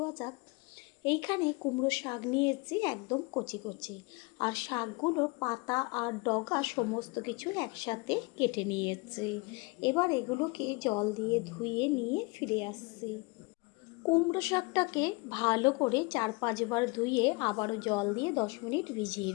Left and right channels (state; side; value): quieter; right; 27.5 dB